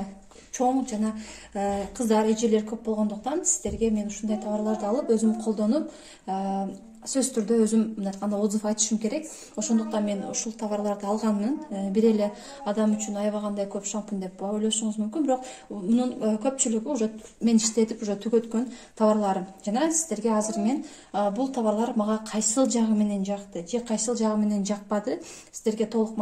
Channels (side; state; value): both; identical; correlation 1.00